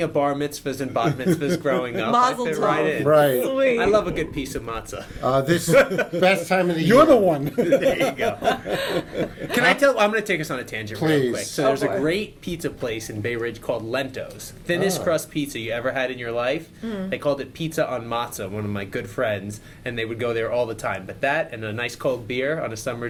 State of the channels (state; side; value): identical; both; correlation 1.00